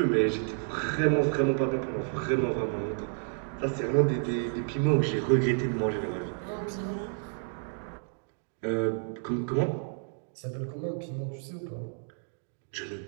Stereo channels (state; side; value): silent; left; 56 dB below the other